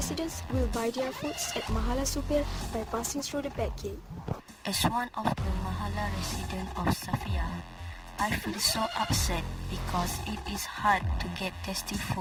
will buy their foods at Mahala Supir by passing through the back gate. As one of the Mahala residents of Safia, I feel so upset because it is hard to get tasty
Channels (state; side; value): identical; both; correlation 1.00